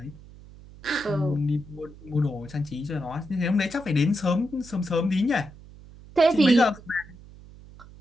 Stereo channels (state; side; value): noise; right; hum, 20 dB below the sound